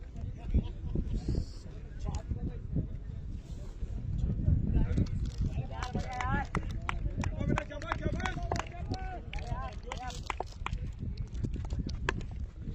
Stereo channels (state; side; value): identical; both; correlation 1.00